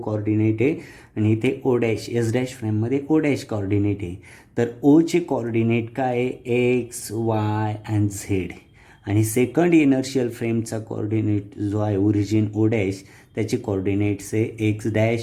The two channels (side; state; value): both; identical; correlation 1.00